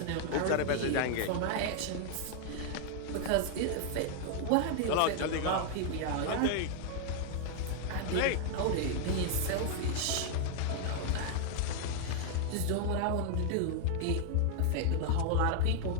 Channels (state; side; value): different; both; correlation 0.00